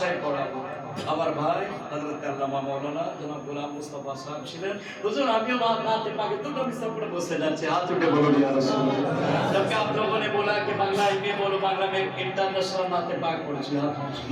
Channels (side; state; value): both; identical; correlation 1.00